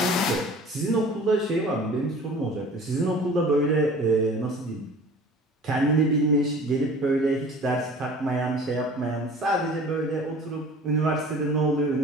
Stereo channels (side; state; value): both; normal; correlation 0.44